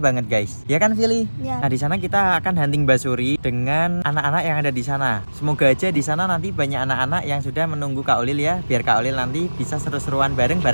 banget guys. Ya kan, Vili? Ya. Nah, di sana kita akan hunting basuri dengan anak-anak yang ada di sana. Semoga aja di sana nanti banyak anak-anak yang sudah menunggu Kak Olil ya, biar Kak Olil nanti bisa seru-seruan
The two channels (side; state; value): both; inverted; correlation -1.00